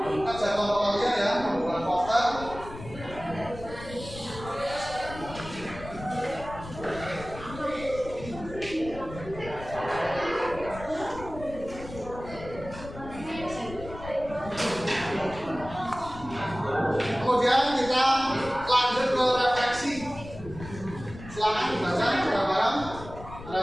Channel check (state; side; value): noise; left; rumble, 13 dB below the sound